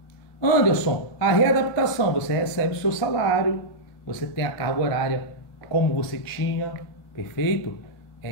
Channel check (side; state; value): right; late; 1.5 ms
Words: Anderson, a readaptação, você recebe o seu salário, você tem a carga horária como você tinha, perfeito?